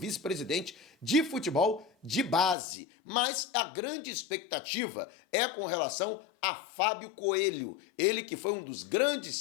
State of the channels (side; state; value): right; drops out; at 2.6 s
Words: de futebol de base. Mas a grande expectativa é com relação a Fábio Coelho, ele que foi um dos